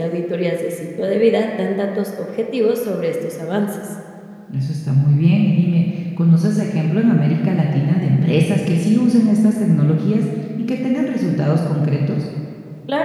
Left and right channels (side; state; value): both; identical; correlation 1.00